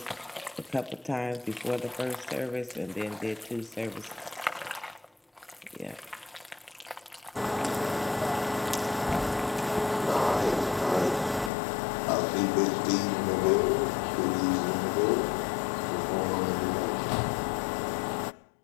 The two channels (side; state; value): right; drops out; at 11.5 s